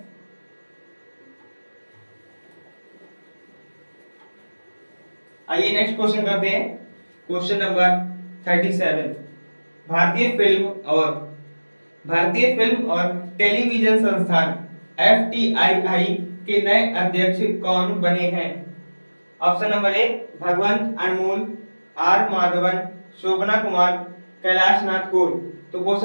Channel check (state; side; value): inverted; both; correlation -1.00